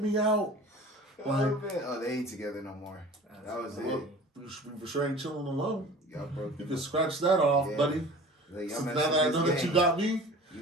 me out. Like, They ain't together no more. That was funny. it. we for sure ain't chilling alone. Y'all broke. You can scratch that off, Yeah. buddy. Like, So now that I know that you got me,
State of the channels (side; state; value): both; normal; correlation 0.42